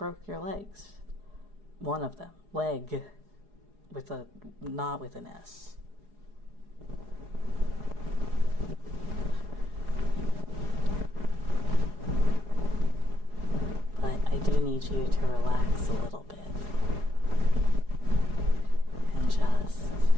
your legs. One of them, leg, not with an S. But I do need you to relax a little bit. And just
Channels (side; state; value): left; late; 4.8 ms